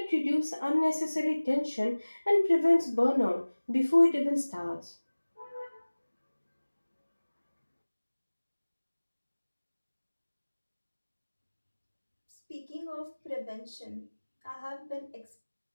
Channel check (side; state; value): both; inverted; correlation -1.00